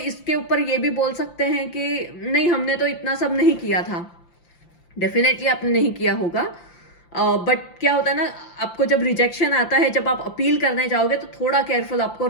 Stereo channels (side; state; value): right; late; 5.8 ms